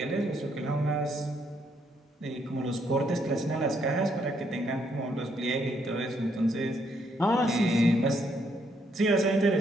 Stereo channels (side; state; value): both; normal; correlation 0.73